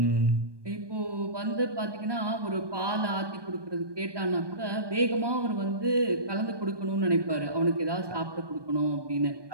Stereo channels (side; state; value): left; late; 1.2 ms